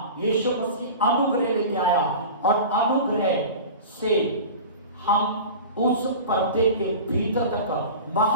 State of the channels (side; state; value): both; inverted; correlation -0.34